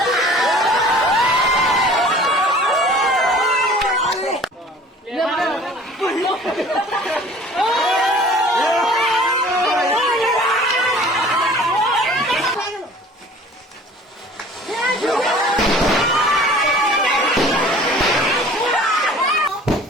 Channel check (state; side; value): normal; both; correlation 0.48